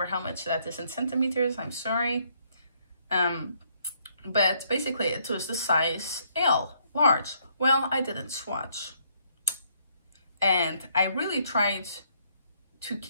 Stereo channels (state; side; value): inverted; both; correlation -0.69